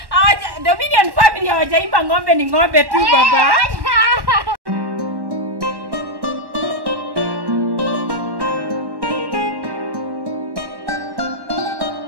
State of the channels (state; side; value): late; left; 1.1 ms